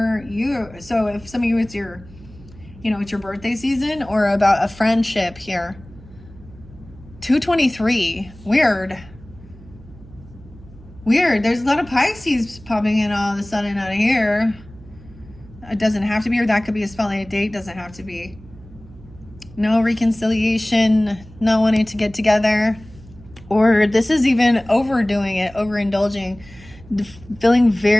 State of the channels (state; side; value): noise; right; hum, 21 dB below the sound